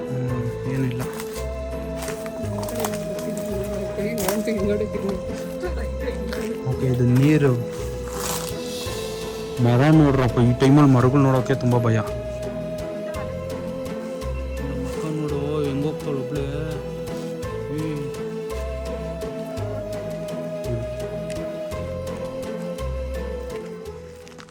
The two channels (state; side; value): identical; both; correlation 1.00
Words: ಏನಿಲ್ಲ. ಓಕೆ, ಇದು ನೀರು. ಮರ ನೋಡ್ರಪ್ಪ, ಈ ಟೈಮಲ್ಲಿ ಮರಗಳು ನೋಡೋಕೆ ತುಂಬ ಭಯ. ಮಕ್ಕ ನೋಡು ಹೆಂಗೋಗ್ತಾಳು ಒಬ್ಳೆ.